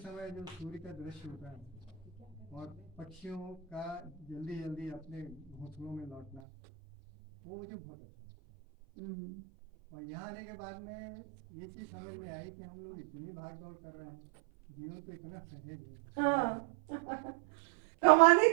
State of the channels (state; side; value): drops out; left; at 6.4 s